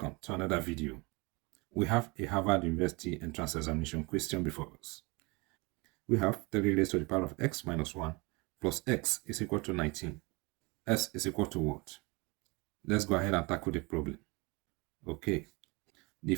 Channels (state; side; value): quieter; left; 27.3 dB